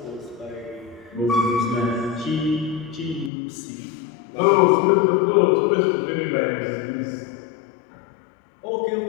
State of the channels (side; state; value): right; drops out; at 3.3 s